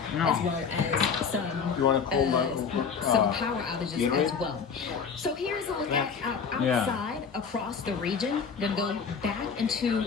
as well as some You want to some power outages Gatorade? as well. So here's a look at our Yeah. outside across the region. Then go back into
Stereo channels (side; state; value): right; quieter; 6.1 dB